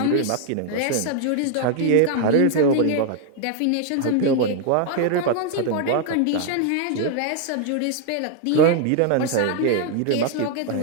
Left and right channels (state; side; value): different; both; correlation 0.00